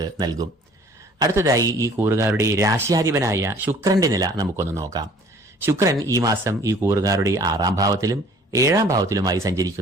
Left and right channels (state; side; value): normal; both; correlation 0.53